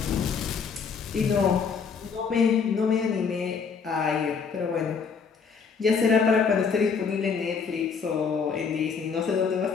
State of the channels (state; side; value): quieter; right; 5.8 dB